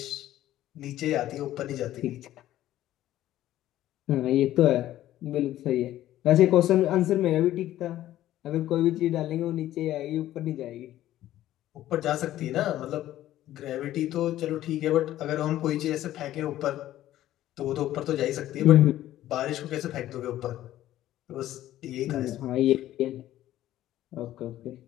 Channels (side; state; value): right; quieter; 13.6 dB